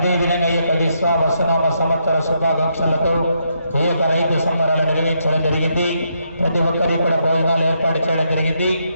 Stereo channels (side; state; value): both; inverted; correlation -0.78